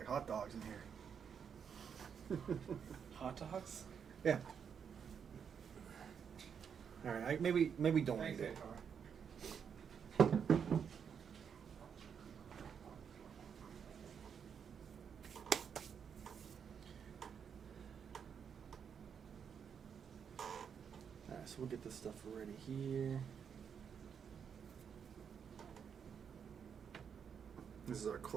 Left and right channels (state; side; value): quieter; left; 7.2 dB